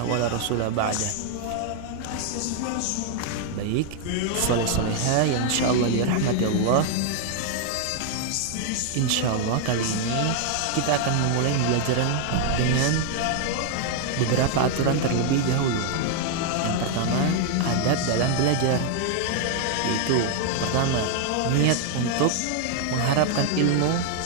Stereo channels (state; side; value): different; both; correlation 0.00